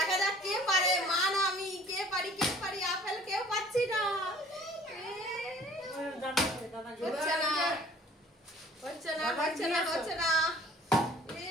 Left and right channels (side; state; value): both; normal; correlation 0.52